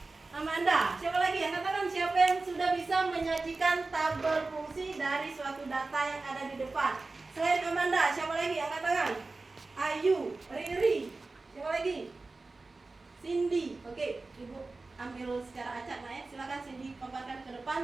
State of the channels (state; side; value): quieter; left; 3.5 dB